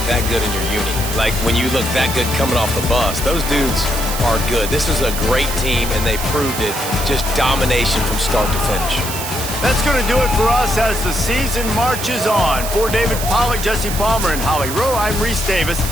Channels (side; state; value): right; noise; hiss, 7 dB below the sound